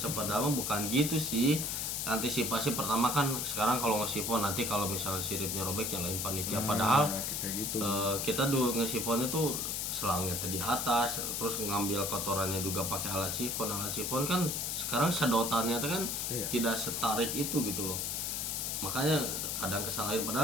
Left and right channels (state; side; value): noise; left; hiss, 1 dB below the sound